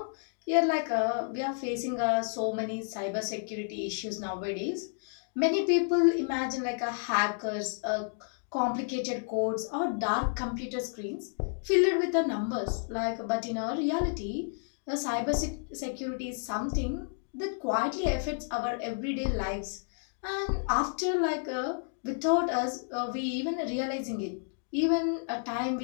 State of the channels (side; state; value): right; silent; digital silence